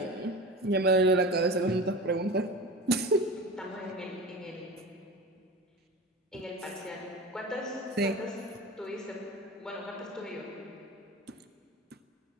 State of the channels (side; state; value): both; normal; correlation 0.31